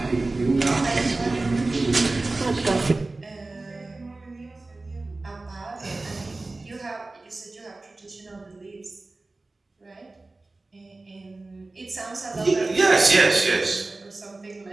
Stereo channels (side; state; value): left; quieter; 3.2 dB